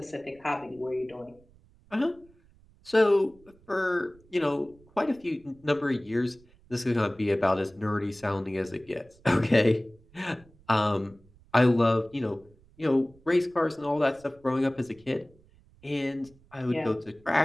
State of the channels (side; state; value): right; noise; rumble, 28 dB below the sound